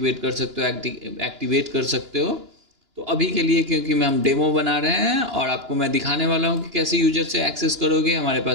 कर सकते हो, एक्टिवेट कर सकते हो। तो अभी के लिए क्योंकि हम डेमो बना रहे हैं और आपको मैं दिखाने वाला हूँ कि कैसे यूजर से एक्सेस करोगे, हमारे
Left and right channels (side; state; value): left; late; 2.9 ms